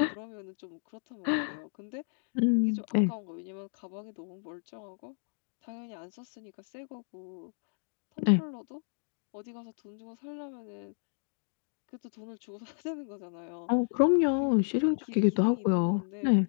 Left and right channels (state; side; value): silent; right; digital silence